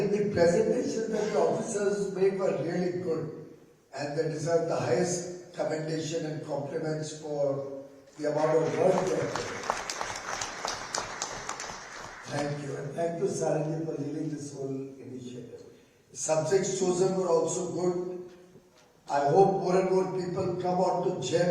the presentations that the officers made were really good and they deserve the highest commendation and compliments for the amount of work they have done. Thank you. And thank you, Saranji, for leading this whole initiative. Subjects chosen were also good. I hope more and more people come on to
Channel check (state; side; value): identical; both; correlation 1.00